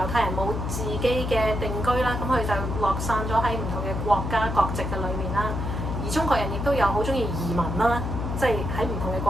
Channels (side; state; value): left; noise; hum, 3 dB below the sound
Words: 太人冇自己嘅定居啦，咁佢就落散咗喺唔同嘅國家國籍嘅裏面啦。而中國人亦都有好中意移民啦，即係喺唔同嘅